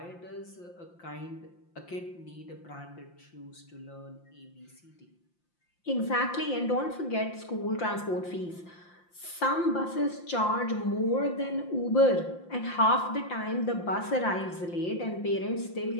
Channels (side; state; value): right; late; 5.8 ms